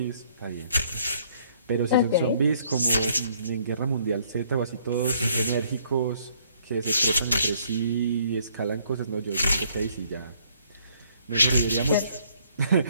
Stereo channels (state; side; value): inverted; both; correlation -0.64